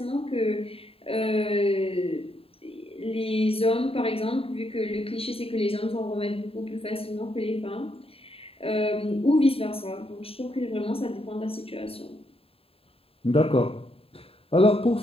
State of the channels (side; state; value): right; late; 0.27 ms